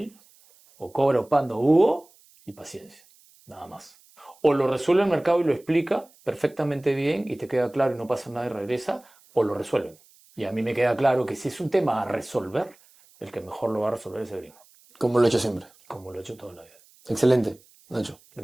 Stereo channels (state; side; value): noise; right; hiss, 29 dB below the sound